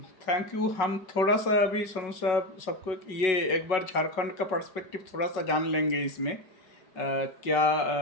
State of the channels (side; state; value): right; late; 5.4 ms